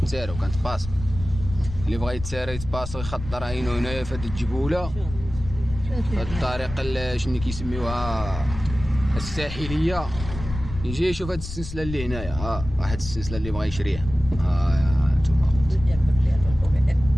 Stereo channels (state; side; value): noise; left; rumble, 10 dB below the sound